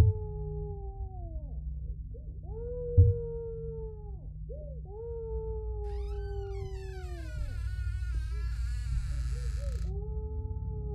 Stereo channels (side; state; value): both; identical; correlation 1.00